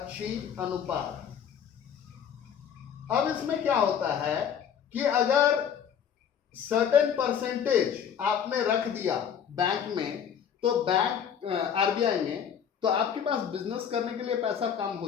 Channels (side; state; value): right; quieter; 8.2 dB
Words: अनुपात। अब इसमें क्या होता है कि अगर सर्टेन परसेंटेज आपने रख दिया बैंक में, तो बैंक आरबीआई में, तो आपके पास बिजनेस करने के लिए पैसा कम